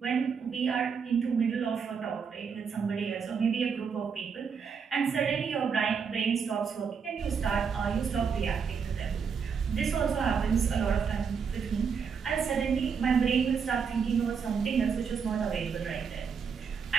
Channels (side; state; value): left; quieter; 6.2 dB